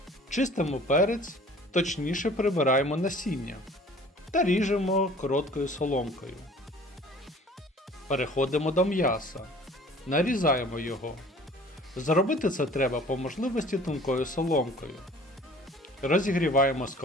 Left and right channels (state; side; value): normal; both; correlation 0.49